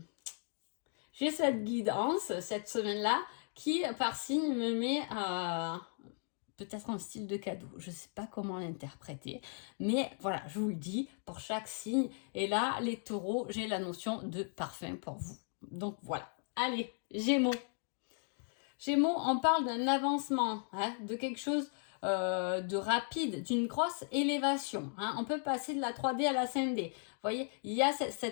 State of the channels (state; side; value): silent; right; 53 dB below the other